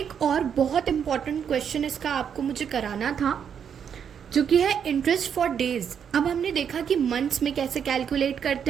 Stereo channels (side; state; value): left; quieter; 7.8 dB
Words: और बहुत इम्पॉर्टेंट क्वेश्चन इसका आपको मुझे कराना था, जो कि है इंटरेस्ट फॉर डेज। अब हमने देखा कि मंथ्स में कैसे कैलकुलेट